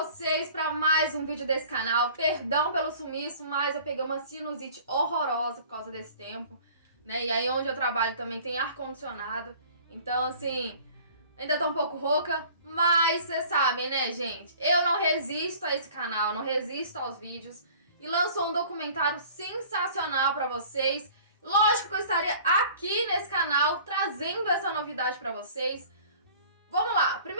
para mais um vídeo desse canal? Perdão pelo sumiço, mas eu peguei uma sinusite horrorosa por causa desse tempo, né? E aí onde eu trabalho também tem ar-condicionado, então assim, ainda tô um pouco rouca, mas vocês sabem, né, gente? Eu não resisto a esse canal, não resisto aos vídeos e lançou um documentário sensacional para vocês. Lógico que eu estaria aqui nesse canal trazendo essa novidade para vocês. Vamos lá,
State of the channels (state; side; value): inverted; both; correlation -0.48